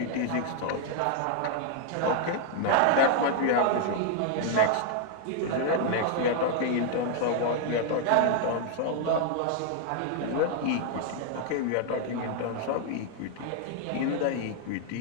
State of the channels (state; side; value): different; both; correlation 0.00